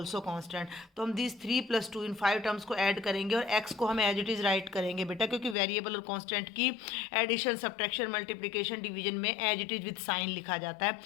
constant. तो हम दीज 3 + 2 इन 5 टर्म्स को ऐड करेंगे और x को हम एज इट इज़ राइट करेंगे बेटा, क्योंकि वेरिएबल और कांस्टेंट की एडिशन सब्ट्रैक्शन मल्टीप्लिकेशन डिवीजन में as it is with sign लिखा जाता है।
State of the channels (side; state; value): right; drops out; at 5.6 s